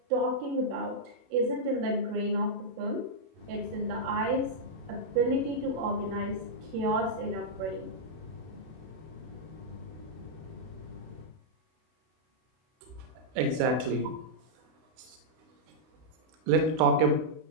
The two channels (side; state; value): left; late; 31 ms